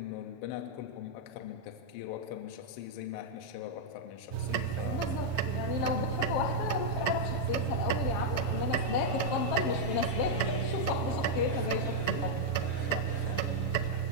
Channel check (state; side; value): late; right; 7.1 ms